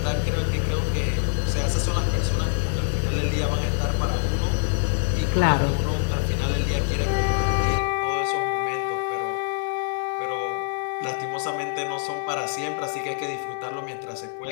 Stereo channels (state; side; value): silent; right; 62 dB below the other